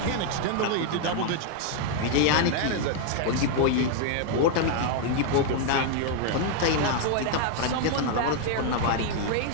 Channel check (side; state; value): both; different; correlation 0.00